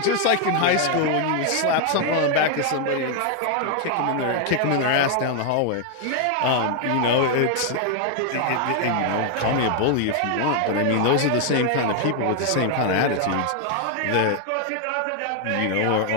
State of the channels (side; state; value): both; different; correlation 0.00